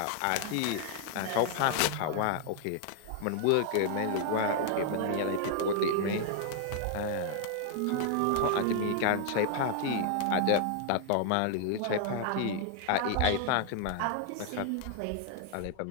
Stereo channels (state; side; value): different; both; correlation 0.00